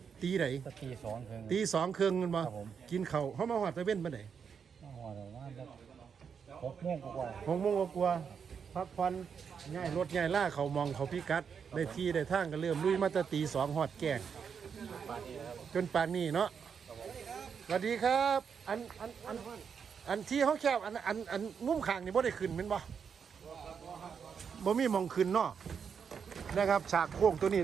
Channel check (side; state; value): left; quieter; 6.7 dB